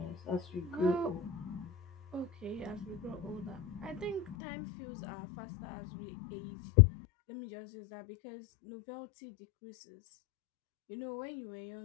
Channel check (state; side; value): drops out; right; at 4.4 s